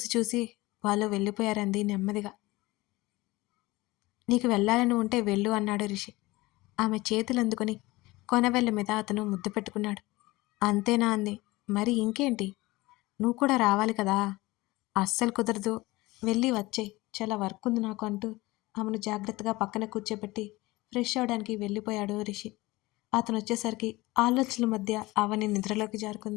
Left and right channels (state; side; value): quieter; right; 20.6 dB